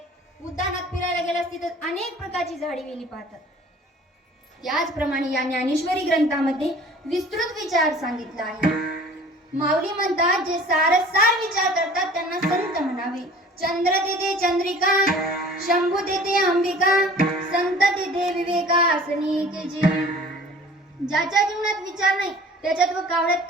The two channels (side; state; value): both; normal; correlation 0.48